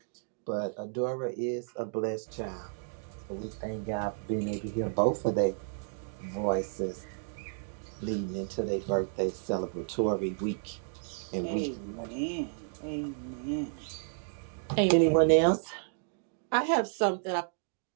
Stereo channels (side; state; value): left; silent; digital silence